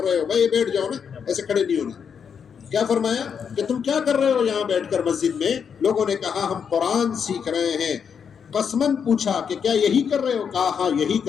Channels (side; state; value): right; quieter; 7.0 dB